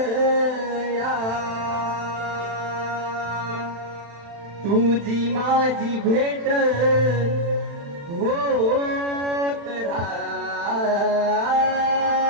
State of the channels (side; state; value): left; late; 35 ms